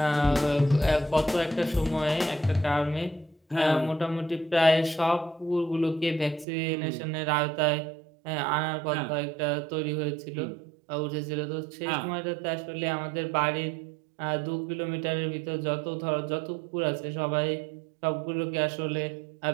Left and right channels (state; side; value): drops out; left; at 6.5 s